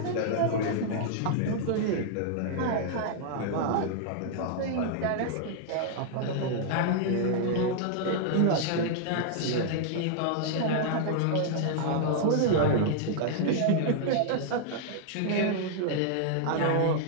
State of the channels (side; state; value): both; different; correlation -0.01